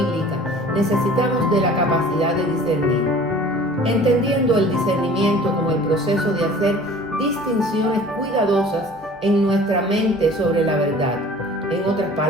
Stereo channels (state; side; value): normal; both; correlation 0.46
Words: necesitamos de la capacidad de discernir. Entendiendo el discernimiento como el proceso de hacer distinciones cuidadosas en nuestra mente sobre la verdad. En otras